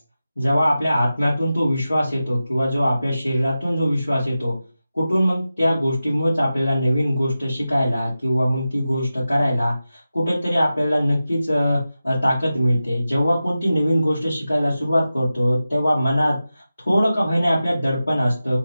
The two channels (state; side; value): inverted; both; correlation -0.93